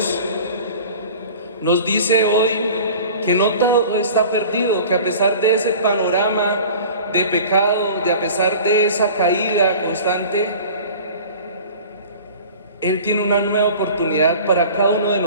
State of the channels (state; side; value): inverted; both; correlation -0.42